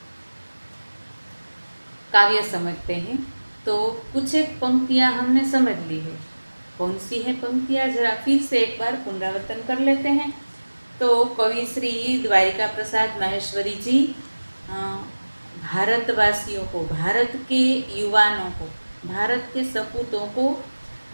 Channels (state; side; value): inverted; both; correlation -1.00